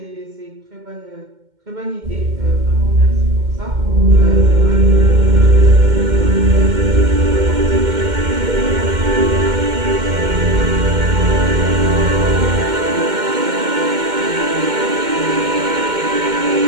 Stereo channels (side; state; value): left; late; 2.1 ms